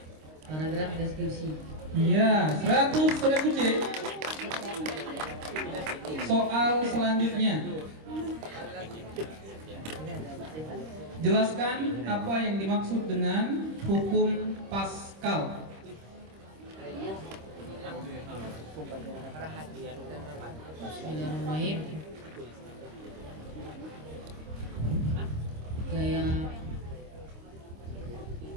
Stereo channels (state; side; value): late; left; 26 ms